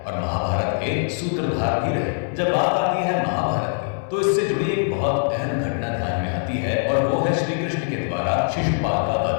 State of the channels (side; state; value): right; silent; 62 dB below the other